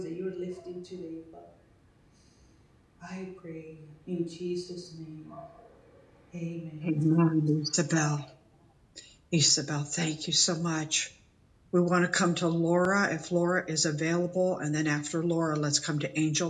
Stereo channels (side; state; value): both; identical; correlation 1.00